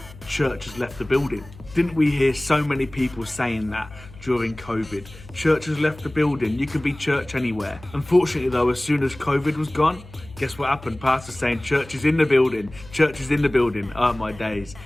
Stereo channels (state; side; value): noise; left; hum, 19 dB below the sound